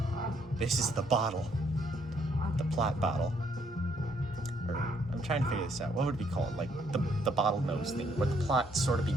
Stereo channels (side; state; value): both; normal; correlation 0.69